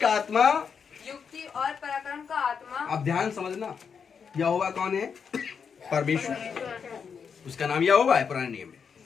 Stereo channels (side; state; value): right; quieter; 6.4 dB